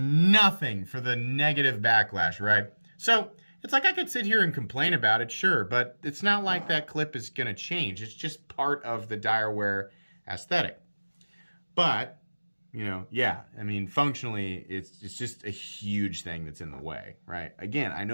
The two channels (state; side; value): inverted; both; correlation -1.00